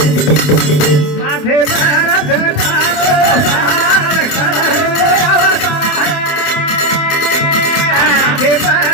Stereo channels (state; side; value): late; right; 28 ms